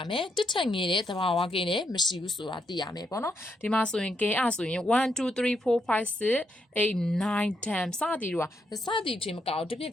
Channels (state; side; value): normal; both; correlation 0.79